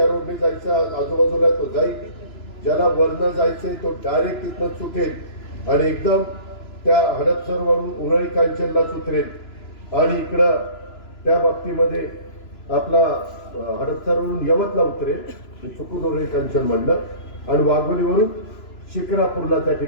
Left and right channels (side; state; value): right; late; 3.0 ms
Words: रोडने जायचं आजूबाजूला तो जाईल, ज्याला वरनं जायचंय तो डायरेक्ट तिथनं सुटेल आणि एकदम त्या हडपसरवरून उरळी कांचनला उतरेल. आणि इकडं त्या बाबतीमध्ये आपला हडपसरवरून यवतला उतरेल, चुकून उरळी कांचन म्हणलं, आणि वाघोलीवरून शिक्रापूरला त्या